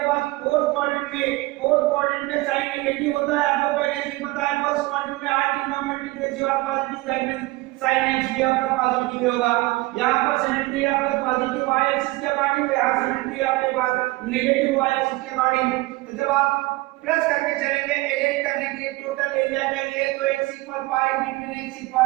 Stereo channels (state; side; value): quieter; left; 20.9 dB